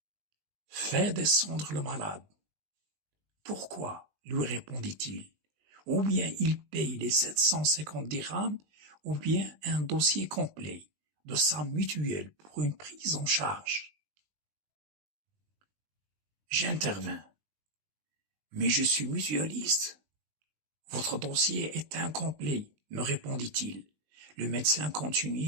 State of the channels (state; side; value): late; left; 20 ms